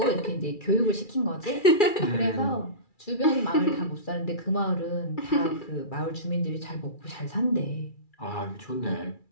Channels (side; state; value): right; late; 2.3 ms